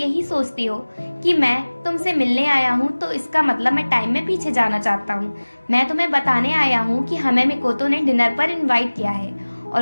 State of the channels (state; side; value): inverted; both; correlation -1.00